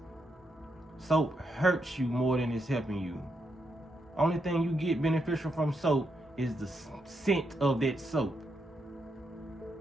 Soap hurts you more than it's helping you. Only thing you get beneficial from soap is the scent of that soap.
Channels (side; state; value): both; normal; correlation 0.81